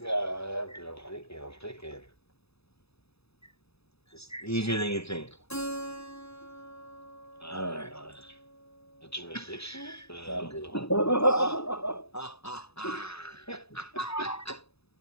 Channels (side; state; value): right; late; 0.79 ms